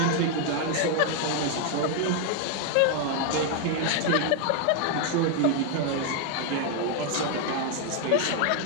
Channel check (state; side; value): different; both; correlation 0.01